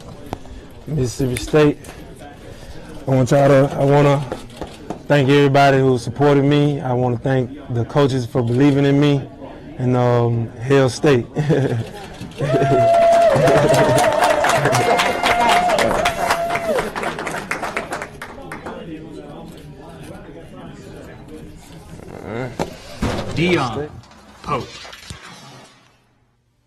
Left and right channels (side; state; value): both; identical; correlation 1.00